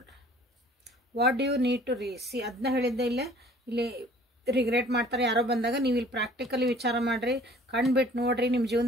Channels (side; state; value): both; normal; correlation 0.53